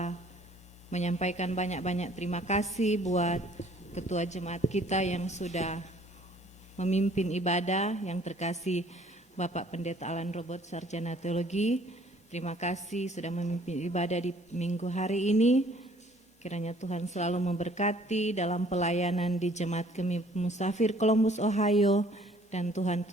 menyampaikan banyak-banyak terima kasih buat Ketua Jemaat kita yang sudah memimpin ibadah, yang terkasih Bapak Pendeta Alan Robert, Sarjana Teologi. Terima kasih sudah memimpin ibadah di minggu hari ini. Kiranya Tuhan selalu memberkati dalam pelayanan di Jemaat Kami Musafir Columbus, Ohio, dan Tuhan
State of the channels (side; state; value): both; normal; correlation 0.57